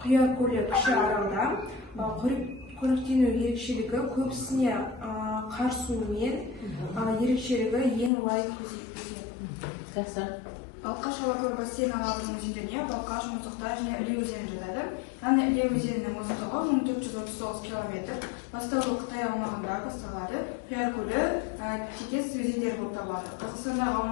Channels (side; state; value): right; drops out; at 8.1 s